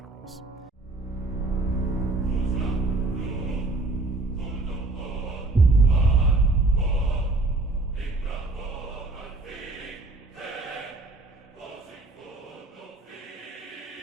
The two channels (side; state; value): left; quieter; 3.1 dB